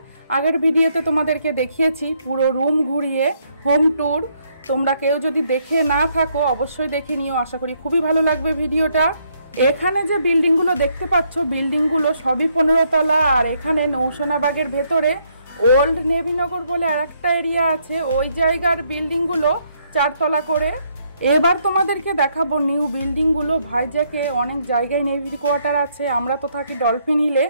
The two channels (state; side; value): inverted; both; correlation -0.72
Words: আগের ভিডিওতে তোমাদেরকে দেখিয়েছি পুরো রুম ঘুরিয়ে হোম ট্যুর। তোমরা কেউ যদি দেখে না থাকো অবশ্যই দেখে নিও, আশা করি খুবই ভালো লাগবে ভিডিওটা। এখানে যে বিল্ডিংগুলো দেখতে পাচ্ছ বিল্ডিংগুলো সবই 15 তলা। আর এখানে নৌসেনা বাগের ভেতরে ওল্ড নেভিনগর বলে আরেকটা এরিয়া আছে, ওই জায়গার বিল্ডিংগুলো 4 তলা করে। এবার তোমাদেরকে দেখাবো নিউ বিল্ডিংগুলো। ভাইজ্যাকে অনেক জায়গায় নেভির কোয়ার্টার আছে। আমরা তো থাকি ডলফিন হিলে,